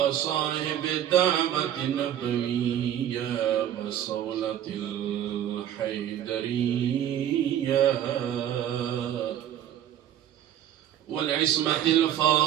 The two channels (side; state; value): left; quieter; 10.9 dB